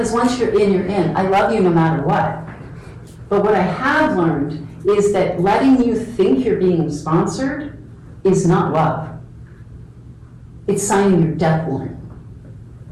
once you're in. I love you no matter what. But what I have learned is that letting you think you're being sponsored is not love. It's signing your death warrant.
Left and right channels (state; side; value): identical; both; correlation 1.00